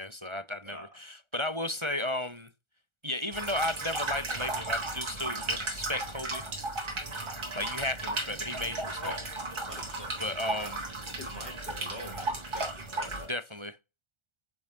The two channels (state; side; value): late; left; 1.4 ms